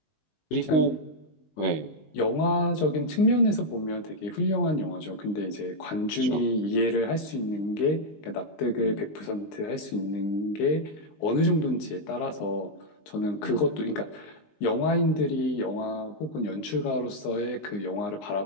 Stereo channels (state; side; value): late; right; 19 ms